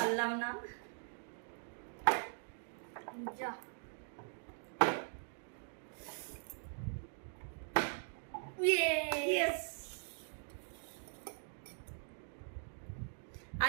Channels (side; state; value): left; silent; digital silence